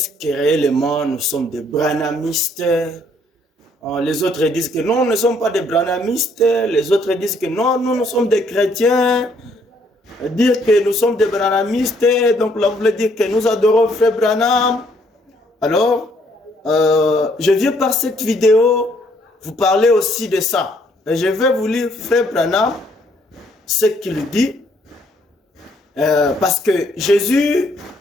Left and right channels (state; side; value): normal; both; correlation 0.67